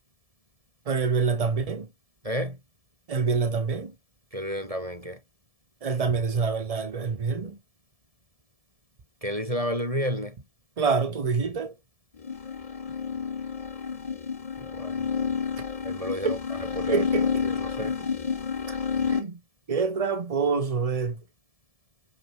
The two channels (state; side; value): late; left; 1.7 ms